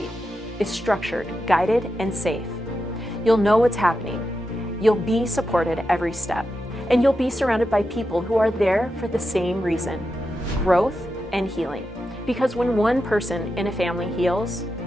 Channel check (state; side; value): normal; both; correlation 0.89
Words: is structured, guided, and safe. You'll know what's happening. You'll be supported every step, and you'll be surrounded by people who are there for the same reason: growth and healing. Because when one person in a family heals,